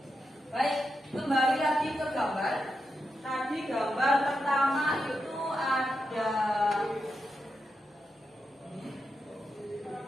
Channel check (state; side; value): normal; both; correlation 0.86